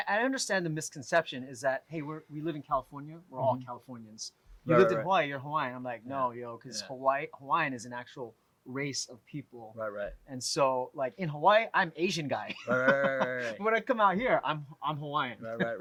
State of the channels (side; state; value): both; identical; correlation 1.00